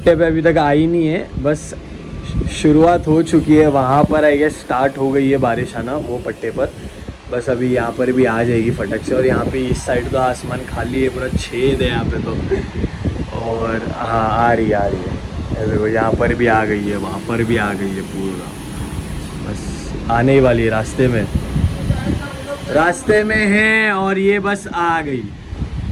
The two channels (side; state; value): both; identical; correlation 1.00